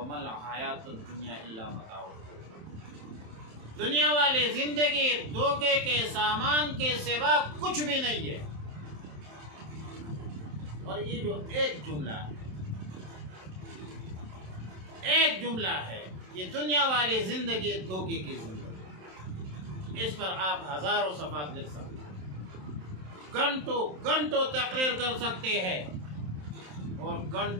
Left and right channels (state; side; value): late; left; 27 ms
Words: الْحَيَاةُ الدُّنْيَا إِلَّا مَتَاعُ الْغُرُورِ، دنیا والی زندگی دھوکے کے سامان کے سوا کچھ بھی نہیں ہے۔ اور یہ جو ایک جملہ ہے، ایک جملہ ہے، یہ دنیا والی زندگی دھوکے کی زندگی، اس پر آپ ہزاروں صفحات لکھ سکتے ہیں، گھنٹوں گھنٹوں تقریر کر سکتے ہیں، اور